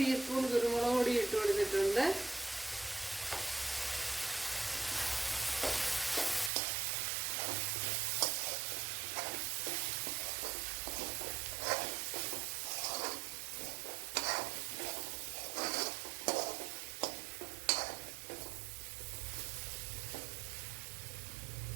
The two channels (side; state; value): left; drops out; at 6.5 s